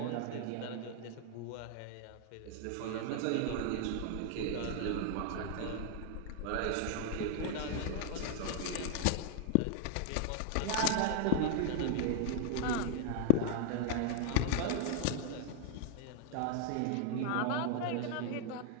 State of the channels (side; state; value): both; different; correlation -0.01